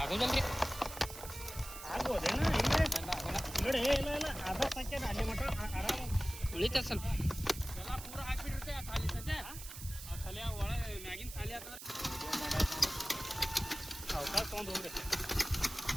ಉಳಿತ ಸ್ವಲ್ಪ ಪೂರ ಹಾಕ್ಬಿಟ್ಟಿರುತ್ತೆ ಖಾಲಿ ಸದ್ಯ ಖಾಲಿ ಒಳಗೆ ಮ್ಯಾಗಿನ ಖಾಲಿ ಆಗ್ತದೆ. ಅವಕಾಶ ತೊಗೊಂಡು ಹೋಗ್ರಿ.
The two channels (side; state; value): right; noise; hiss, 12 dB below the sound